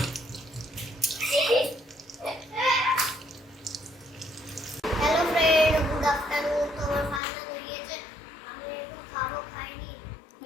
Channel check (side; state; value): right; drops out; at 7.2 s